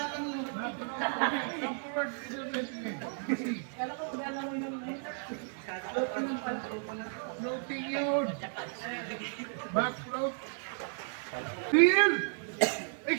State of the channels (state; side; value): silent; left; 55 dB below the other